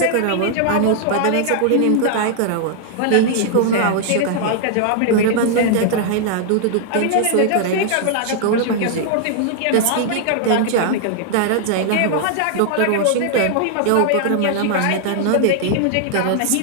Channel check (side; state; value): both; different; correlation 0.00